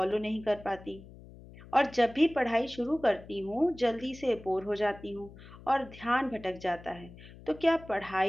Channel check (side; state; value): left; noise; hum, 19 dB below the sound